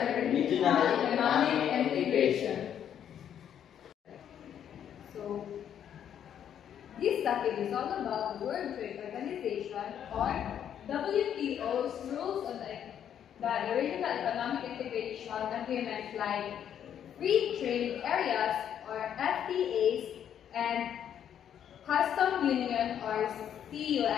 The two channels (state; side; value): quieter; right; 9.4 dB